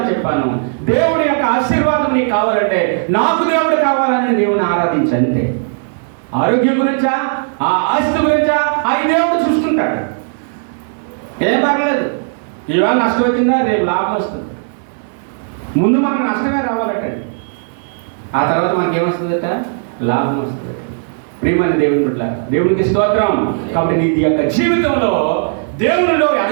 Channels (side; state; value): left; silent; digital silence